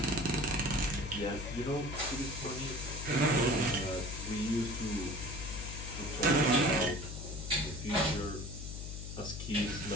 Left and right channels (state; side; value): noise; left; hum, 8 dB below the sound